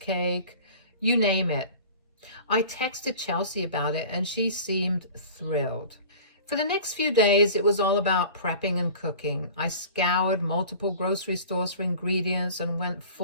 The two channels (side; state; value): both; inverted; correlation -0.42